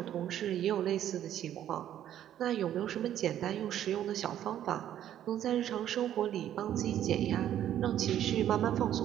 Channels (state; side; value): quieter; left; 11.1 dB